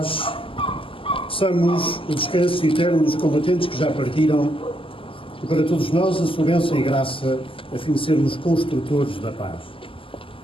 peçamos o descanso eterno dos combatentes que já partiram e para todos nós a sua bênção e graça, a fim de sermos construtores da paz.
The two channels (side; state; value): right; late; 0.25 ms